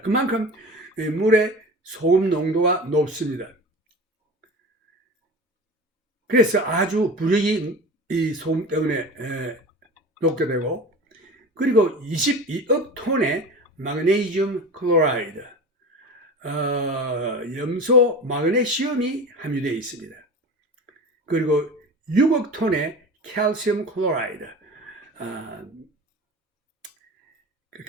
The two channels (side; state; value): both; normal; correlation 0.33